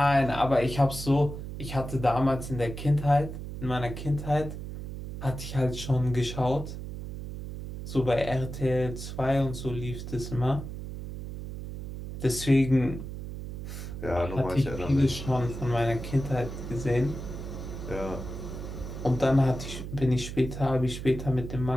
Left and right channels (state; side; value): noise; right; hum, 8 dB below the sound